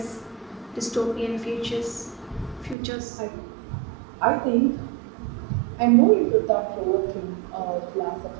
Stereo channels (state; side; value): drops out; left; at 2.8 s